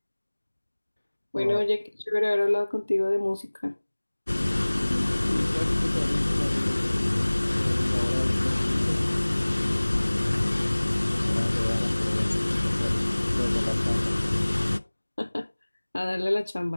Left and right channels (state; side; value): inverted; both; correlation -1.00